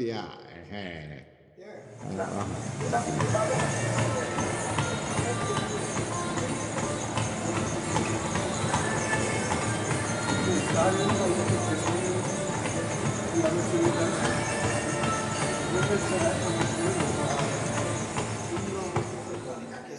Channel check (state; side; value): identical; both; correlation 1.00